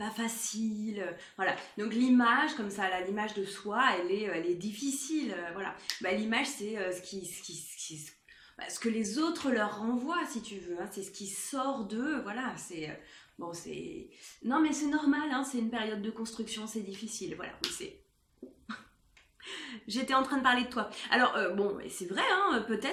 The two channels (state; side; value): identical; both; correlation 1.00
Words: facile. Voilà. Donc l'image, comme ça, là, l'image de soi, elle est difficile. Voilà. Bah, l'image, c'est ce que les autres leur renvoient, si tu veux. Hein. C'est ce qui sort d'eux. Voilà. Bon, c'est. Non, mais c'est normal. Hein. C'est une période de construction, c'est difficile. Voilà. Oui, c'est. J'étais en train de parler de toi. Alors, bon, c'est vrai, hein,